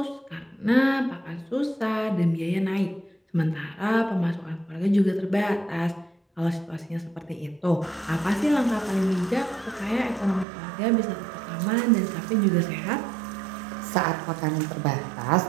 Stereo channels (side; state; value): left; drops out; at 10.5 s